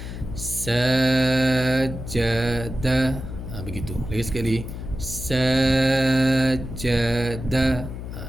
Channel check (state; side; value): noise; left; hum, 8 dB below the sound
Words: sajada. Begitu. Lagi sekali, sajada.